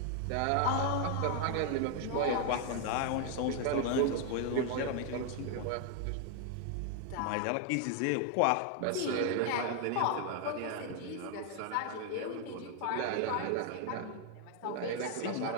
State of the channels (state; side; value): different; both; correlation 0.00